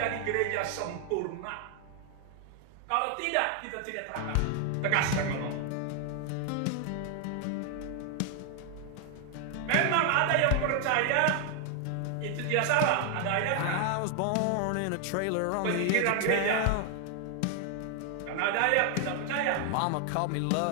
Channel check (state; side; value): different; both; correlation 0.00